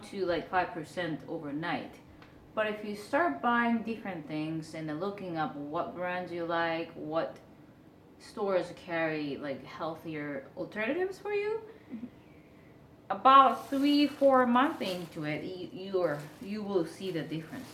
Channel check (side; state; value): both; identical; correlation 1.00